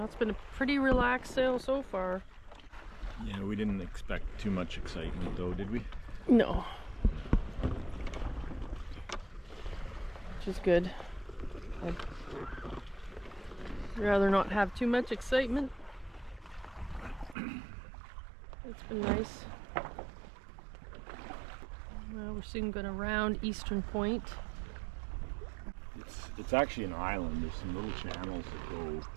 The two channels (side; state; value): left; drops out; at 17.4 s